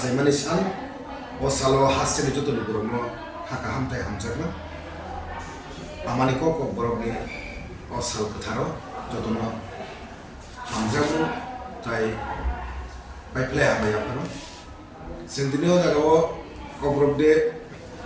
sal o salo hasil itu tuh lokurok no kaham amani ko Kokborok ni o sal ketharo jotono hamjamu tai play Hambai yaphar sendiri jago Kokborok de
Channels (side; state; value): both; identical; correlation 1.00